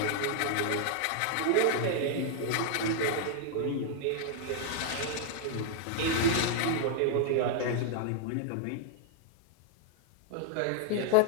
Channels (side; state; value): both; different; correlation -0.01